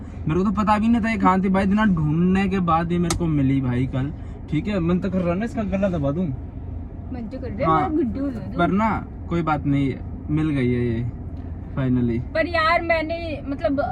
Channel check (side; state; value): both; identical; correlation 1.00